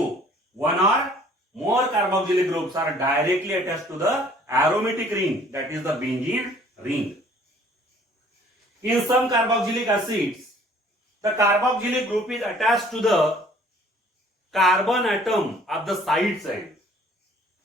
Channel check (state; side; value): normal; both; correlation 0.55